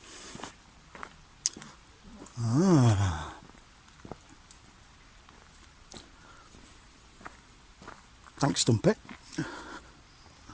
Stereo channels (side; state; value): both; identical; correlation 1.00